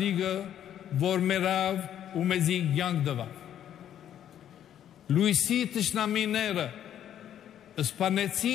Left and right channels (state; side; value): quieter; right; 10.5 dB